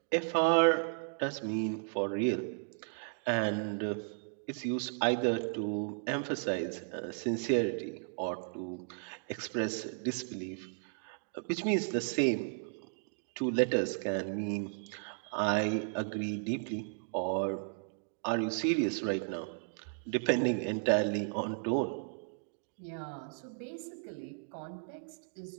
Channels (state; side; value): silent; left; digital silence